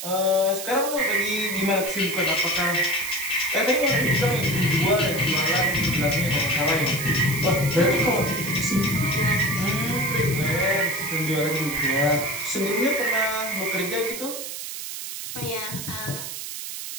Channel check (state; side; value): noise; right; hiss, 7 dB below the sound